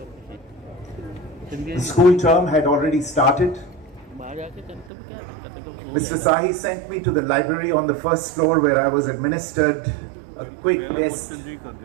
The school term had already started. Mr. Sahi sent me to the library on the first floor where I was administered a quick test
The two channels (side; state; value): left; drops out; at 4.9 s